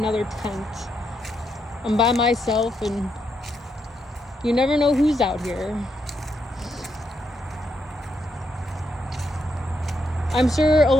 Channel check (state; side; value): normal; both; correlation 0.80